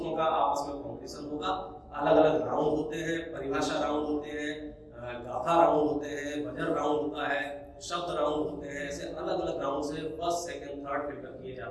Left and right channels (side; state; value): both; identical; correlation 1.00